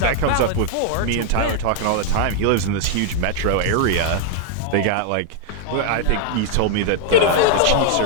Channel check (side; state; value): both; different; correlation 0.00